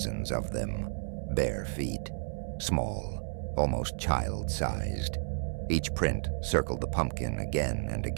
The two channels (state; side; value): silent; left; 56 dB below the other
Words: of them, bare feet, small, almost child-sized. Each print circled the pumpkin again and